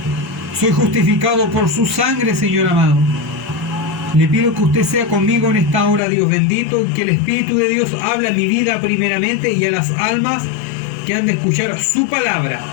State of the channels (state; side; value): drops out; right; at 6.0 s